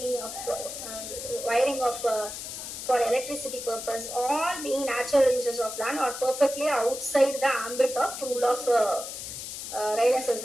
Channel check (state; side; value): noise; left; hiss, 8 dB below the sound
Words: wiring of for electricity purpose, all being natural uses of land are perfectly outside the ambit of rule of Raylan versus